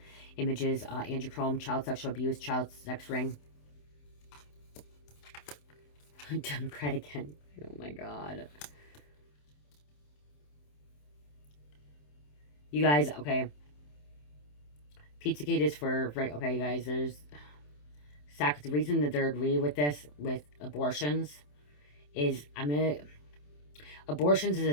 images, Andrew Cuomo, child sexual abuse, child sex ring. Democrat again. Oh my God. You guys, okay. Pizzagate is for, right, okay, you guys, there's, the reason that they're agreeing with this, with abortions, is, abortions is a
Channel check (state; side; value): late; right; 27 ms